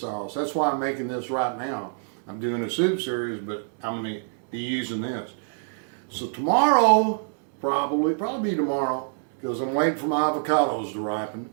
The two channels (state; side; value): silent; left; digital silence